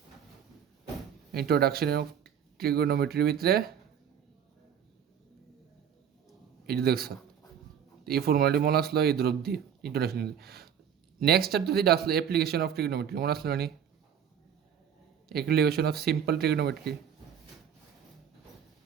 Introduction of ট্রিগোনোমেট্রির ভিতরে এই দেখছ, এই ফর্মুলাটি মনে আসলো এই দ্রব দিয়ে ইন্ট্রোডাকশন। নেক্সট চ্যাপ্টার যেটা আসলো অ্যাপ্লিকেশন অফ ট্রিগোনোমেট্রি, মনে আসলো মানে application of simple trigonometry.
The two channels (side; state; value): left; quieter; 8.6 dB